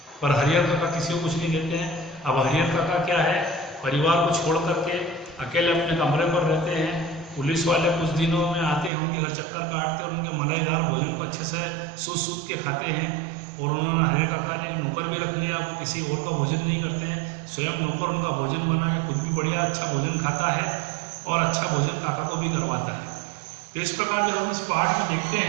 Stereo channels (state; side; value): drops out; left; at 8.9 s